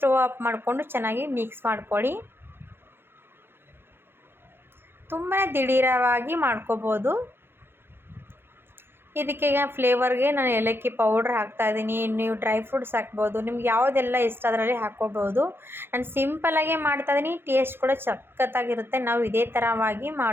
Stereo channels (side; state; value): left; late; 0.11 ms